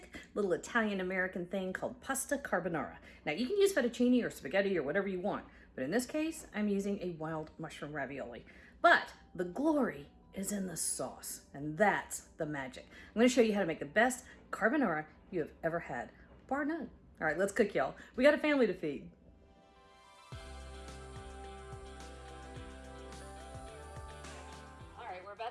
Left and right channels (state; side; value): identical; both; correlation 1.00